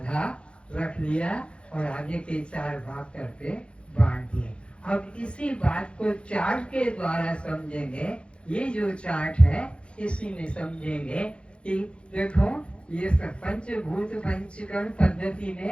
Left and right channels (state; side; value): late; right; 0.058 ms